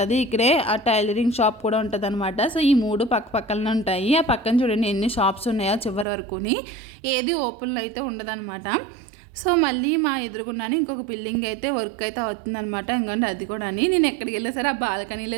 ఇక్కడే ఆ టైలరింగ్ షాప్ కూడా ఉంటుంది అనమాట. సో ఈ మూడు పక్క పక్కనే ఉంటాయి. ఆ పక్కన చూడండి ఎన్ని షాప్స్ ఉన్నాయో చివరి వరకుని. ఏది ఓపెన్లో అయితే ఉండదన్నమాట. సో మళ్ళీ మా ఎదురుగున్నాను ఇంకొక బిల్డింగ్ అయితే వర్క్ అయితే అవుతుందన్నమాట. ఇంకంటే అది కూడా నేను ఎక్కడికి వెళ్ళా సరే ఆ బాల్కనీలో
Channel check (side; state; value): left; drops out; at 6.1 s